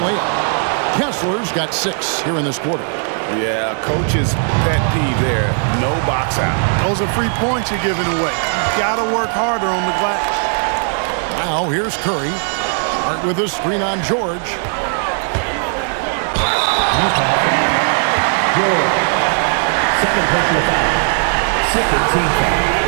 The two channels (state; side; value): silent; left; 55 dB below the other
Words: Kessler's got 6 here in this quarter. Yeah, coach's pet peeve there. No box out. Those are free points you're giving away. You've got to work harder on the glass. Now here's Curry. Start with a screen on George. Second personal foul. Second team foul.